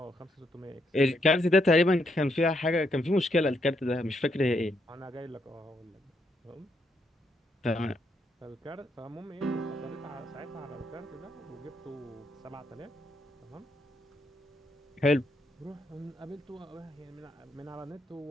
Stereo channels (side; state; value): both; normal; correlation 0.77